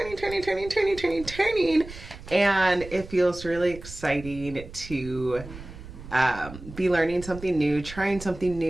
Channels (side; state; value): right; noise; rumble, 14 dB below the sound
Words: and it feels really exciting to be learning something new, trying something